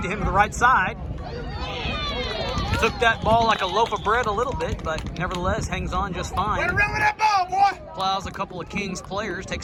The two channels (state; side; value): identical; both; correlation 1.00